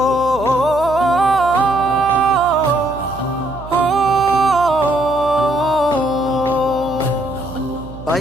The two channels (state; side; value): noise; right; hum, 14 dB below the sound